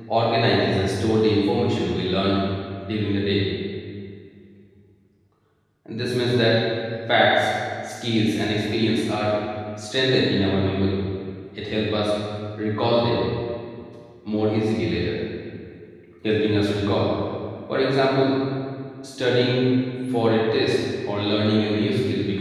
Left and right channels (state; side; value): identical; both; correlation 1.00